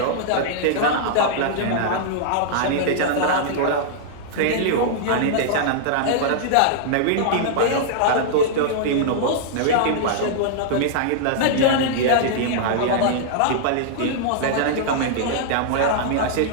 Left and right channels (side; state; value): both; different; correlation -0.01